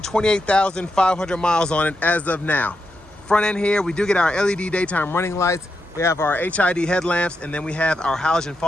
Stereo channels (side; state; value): both; normal; correlation 0.85